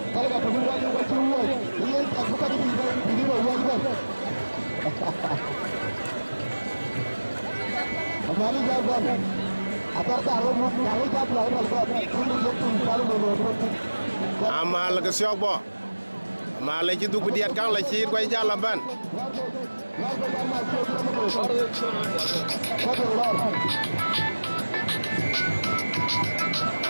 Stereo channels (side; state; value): both; inverted; correlation -1.00